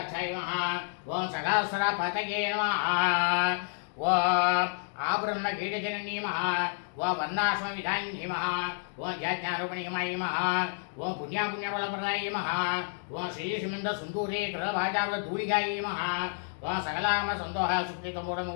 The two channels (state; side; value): silent; right; digital silence